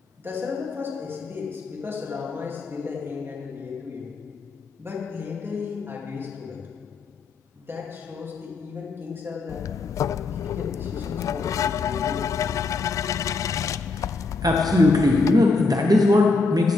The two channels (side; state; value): right; quieter; 3.6 dB